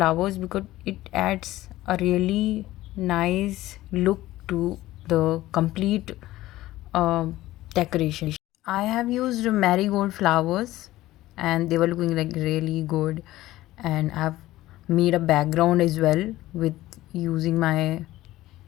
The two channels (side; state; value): right; quieter; 16.2 dB